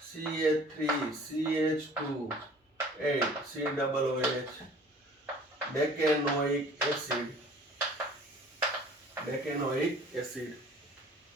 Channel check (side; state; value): both; normal; correlation 0.49